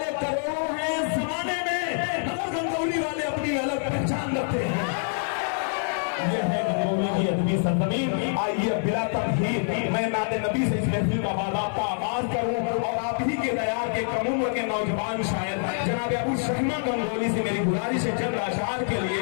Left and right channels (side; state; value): right; silent; 61 dB below the other